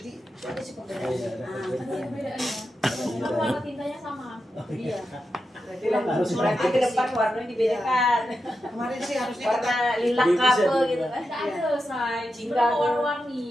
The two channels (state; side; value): normal; both; correlation 0.88